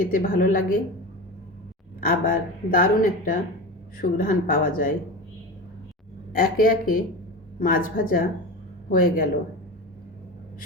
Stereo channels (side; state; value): both; normal; correlation 0.27